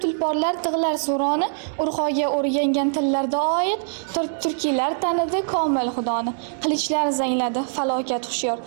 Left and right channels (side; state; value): left; silent; digital silence